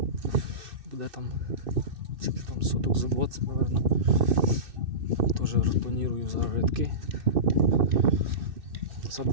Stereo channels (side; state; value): left; late; 2.6 ms